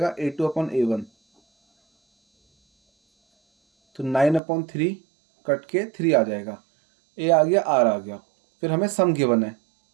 A2/A1, तो 9/3 कट के 3 आ जाएगा, ए आ गया आर आ गया। फिर हमें सम गिवन है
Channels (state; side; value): drops out; left; at 4.4 s